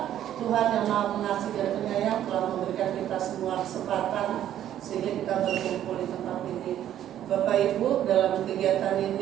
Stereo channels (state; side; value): quieter; left; 11.4 dB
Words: Tuhan yang Maha Pengasih dan Penyayang telah memberikan kita semua kesempatan sehingga kita berkumpul di tempat ini. Bapak Ibu, dalam kegiatan